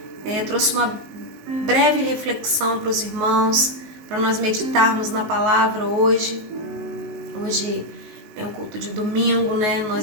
Trouxe uma breve reflexão para os irmãos, para nós meditarmos na palavra hoje. Hoje é um culto de domingo, né?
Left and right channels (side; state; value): left; late; 19 ms